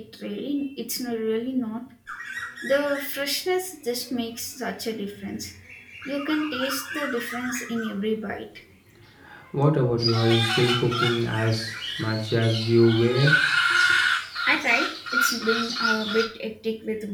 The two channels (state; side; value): identical; both; correlation 1.00